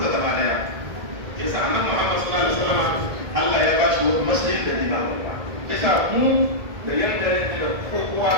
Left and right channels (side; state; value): left; late; 1.8 ms